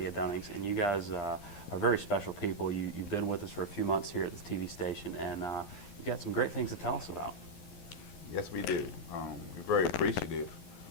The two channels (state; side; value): late; right; 11 ms